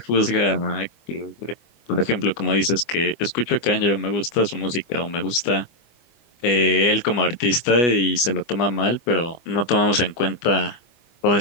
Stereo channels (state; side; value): late; right; 25 ms